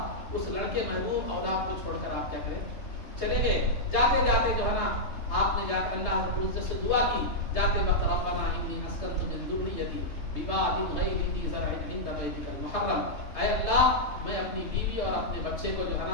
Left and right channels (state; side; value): late; right; 3.3 ms